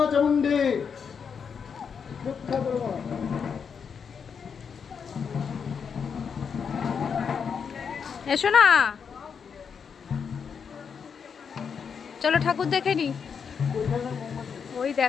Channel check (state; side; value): quieter; right; 6.5 dB